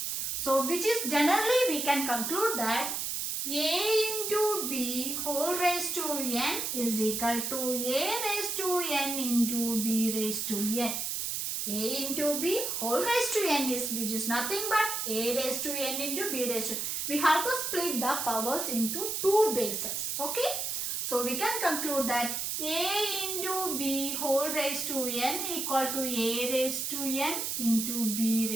So which is generally we can conclude that a into b whole raised to n is equal to a raised to n into b raised to n. A into b whole raised to n is, which is nothing but a raised to n into b raised to n. We have to split the powers into 2 bases. Okay. So we can conclude that a into b whole raised to n equal to a raised to n into b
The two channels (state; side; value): noise; right; hiss, 2 dB below the sound